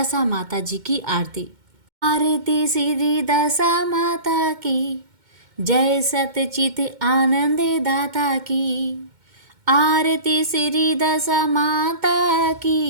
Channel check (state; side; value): late; left; 2.1 ms